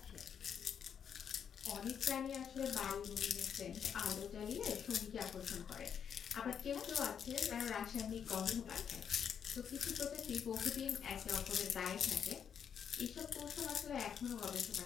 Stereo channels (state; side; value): quieter; right; 7.8 dB